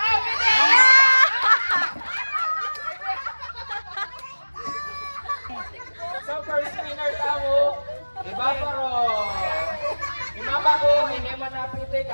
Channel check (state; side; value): inverted; both; correlation -1.00